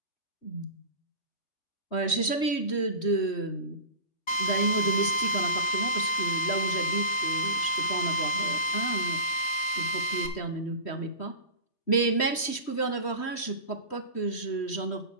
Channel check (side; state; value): right; late; 3.1 ms